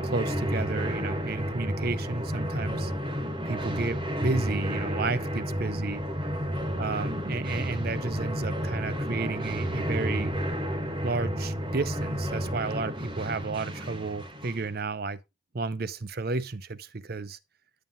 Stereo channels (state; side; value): normal; both; correlation 0.61